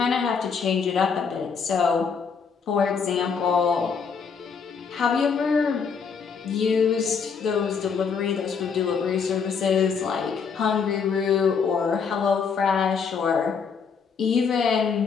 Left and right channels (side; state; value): right; quieter; 6.0 dB